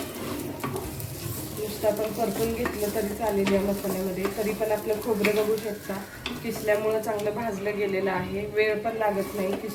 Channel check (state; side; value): identical; both; correlation 1.00